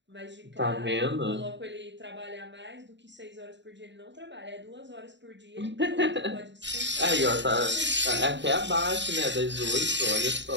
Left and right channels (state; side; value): late; left; 0.52 ms